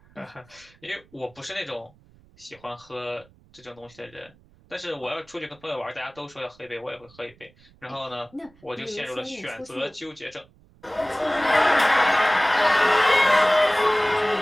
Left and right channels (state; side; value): noise; right; rumble, 28 dB below the sound